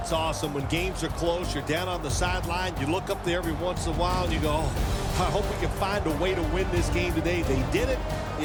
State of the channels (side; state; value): both; identical; correlation 1.00